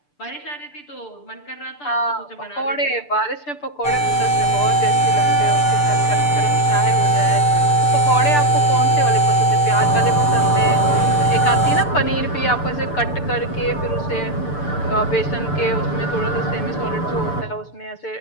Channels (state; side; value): late; right; 6.8 ms